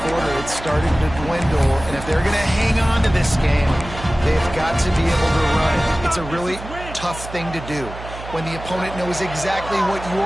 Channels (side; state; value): right; noise; hum, 12 dB below the sound